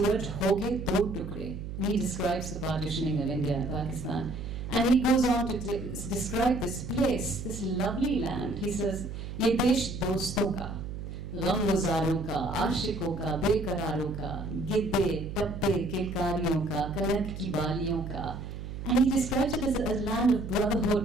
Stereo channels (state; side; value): noise; right; hum, 8 dB below the sound